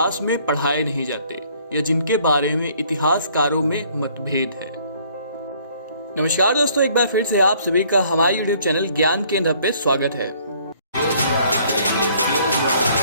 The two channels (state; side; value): inverted; both; correlation -0.60